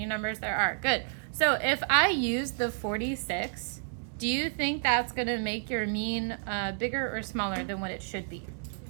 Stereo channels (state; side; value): silent; left; digital silence